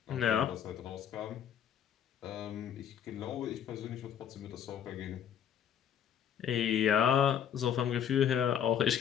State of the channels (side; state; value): right; quieter; 9.1 dB